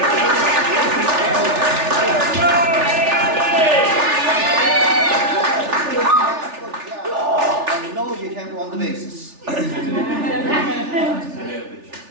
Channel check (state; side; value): late; left; 3.4 ms